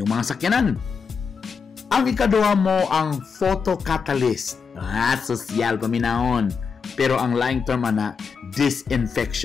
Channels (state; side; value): quieter; right; 5.7 dB